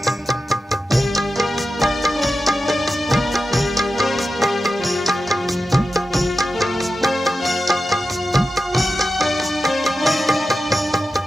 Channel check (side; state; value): both; normal; correlation 0.92